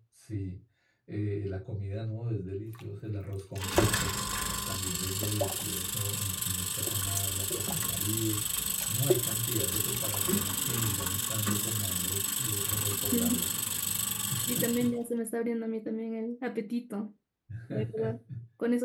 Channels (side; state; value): both; identical; correlation 1.00